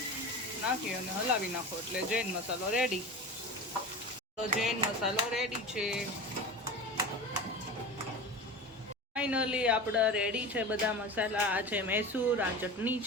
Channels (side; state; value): both; normal; correlation 0.30